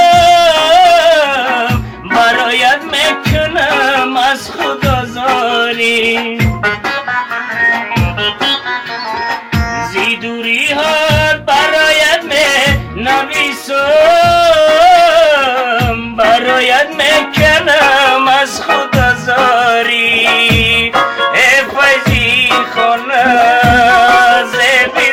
برایت میکنم از خود آزاری. زی دوری ها برایت می نویسم، برایت میکنم از خود آزاری. ای فیضی خانه زیبی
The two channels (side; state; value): both; identical; correlation 1.00